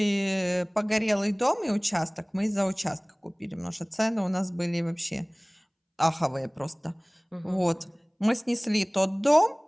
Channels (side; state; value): both; identical; correlation 1.00